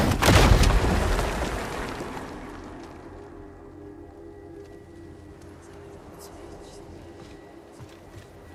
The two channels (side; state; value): both; identical; correlation 1.00